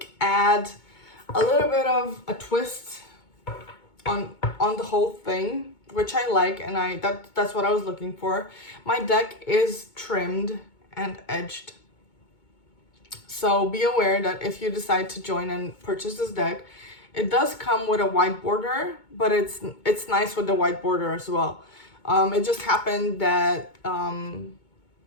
add a little bit of a twist on the whole thing, which I like, and that's what I was looking for. My deck is trimmed and edged, so be aware that if you decide to join and purchase this deck, it does come with a white border, but it's nice with the white border as well. It just happened that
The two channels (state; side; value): late; right; 2.2 ms